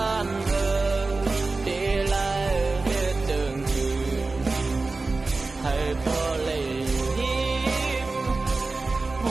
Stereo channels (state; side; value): quieter; left; 3.6 dB